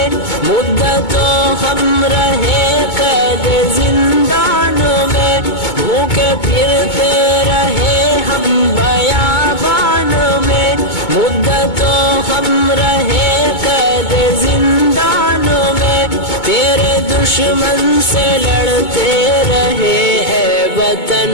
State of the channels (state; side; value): late; right; 2.2 ms